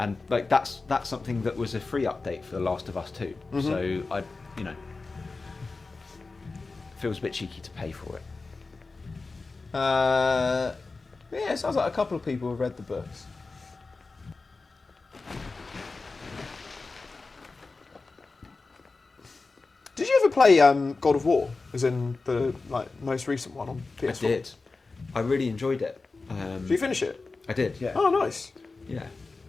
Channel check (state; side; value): quieter; right; 3.8 dB